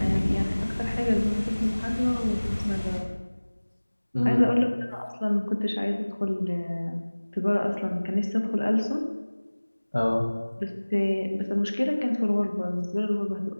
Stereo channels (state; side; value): inverted; both; correlation -1.00